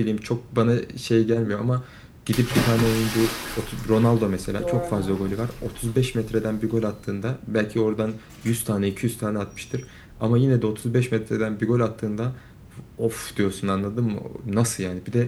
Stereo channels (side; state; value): both; identical; correlation 1.00